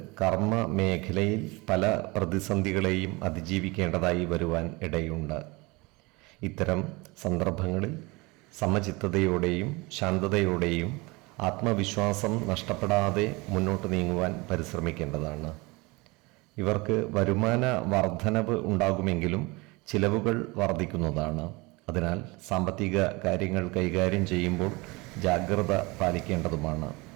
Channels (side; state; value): left; quieter; 24.8 dB